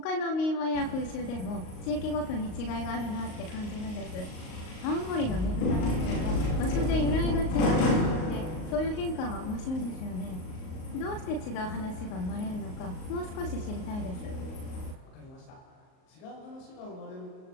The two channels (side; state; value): right; late; 38 ms